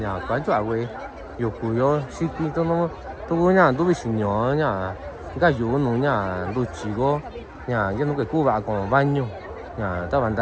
quán chỗ vậy, yêu cú yo, xí kinh tôi nó, tôi nhà, tôi bị sinh nhỏ nhà, cái yêu nó nhà, tôi chỉ có nhà, cái nó cái cú vào còn bao nhiêu, nhà, ta bạn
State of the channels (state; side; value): identical; both; correlation 1.00